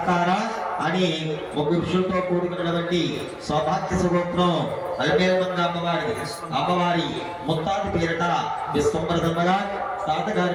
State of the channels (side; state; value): both; identical; correlation 1.00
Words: అని 3 విషయంతో కూడుకున్నటువంటి సౌభాగ్య స్వరూపం అల్మేల్మంగ అమ్మవారి ముత్తాత పేరిట విశ్వంబర శర్మగారు,